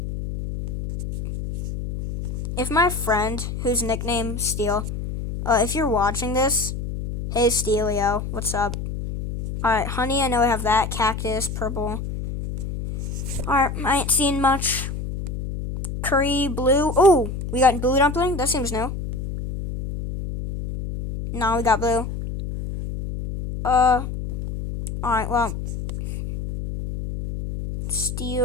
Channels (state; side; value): noise; left; hum, 5 dB below the sound